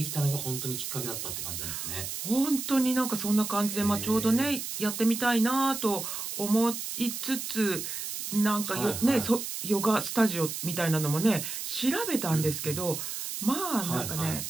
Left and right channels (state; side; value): noise; right; hiss, 5 dB below the sound